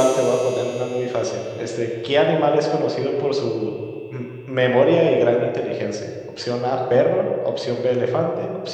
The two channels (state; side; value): identical; both; correlation 1.00